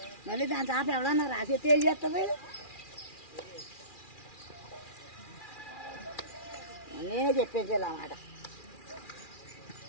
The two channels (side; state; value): right; late; 2.4 ms